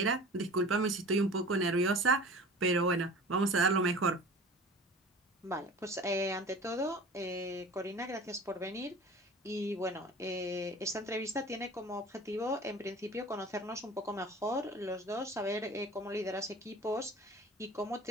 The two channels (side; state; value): both; normal; correlation 0.41